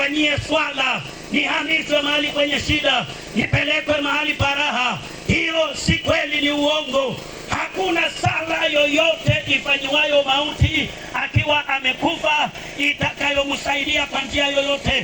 swala, nihamishwe mahali kwenye shida, nipelekwe mahali paraha. Hiyo si kweli, ni uongo. Hakuna sala yoyote ifanyiwayo mauti akiwa amekufa itakayomsaidia kwa njia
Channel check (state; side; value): identical; both; correlation 1.00